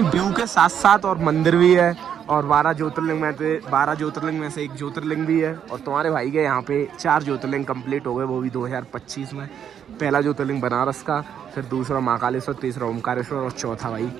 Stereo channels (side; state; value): left; quieter; 8.7 dB